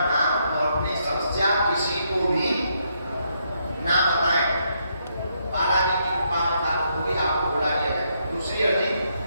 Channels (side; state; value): both; inverted; correlation -0.76